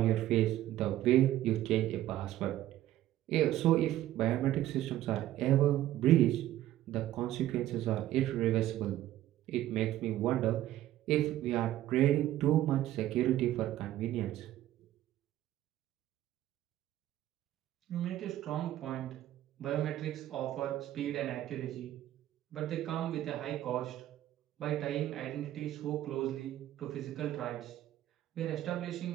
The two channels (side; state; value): left; quieter; 13.7 dB